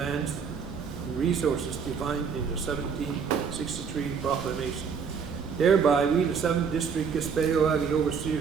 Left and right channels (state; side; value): quieter; left; 6.2 dB